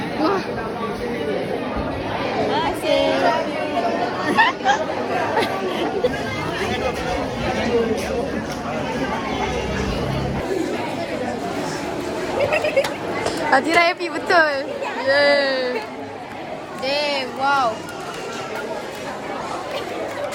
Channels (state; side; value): identical; both; correlation 1.00